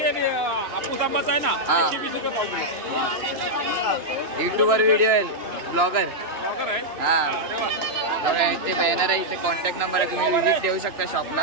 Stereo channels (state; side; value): late; left; 2.9 ms